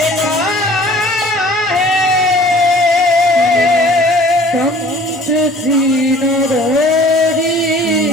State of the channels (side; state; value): both; normal; correlation 0.50